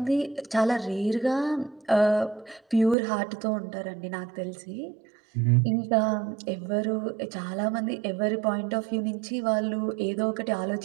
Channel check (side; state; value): left; drops out; at 3.0 s